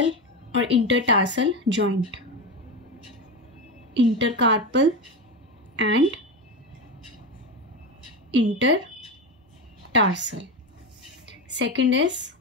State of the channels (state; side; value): normal; both; correlation 0.18